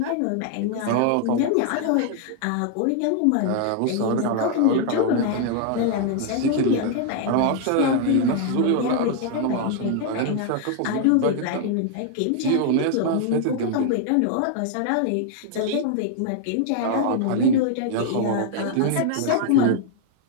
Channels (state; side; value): different; both; correlation 0.00